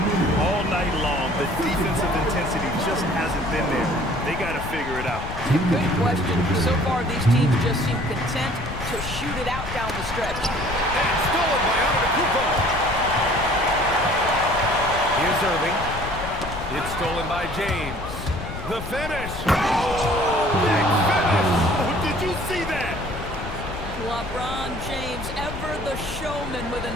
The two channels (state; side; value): noise; left; rumble, 9 dB below the sound